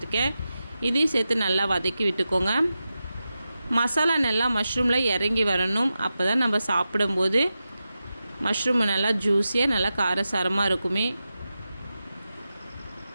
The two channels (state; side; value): inverted; both; correlation -0.92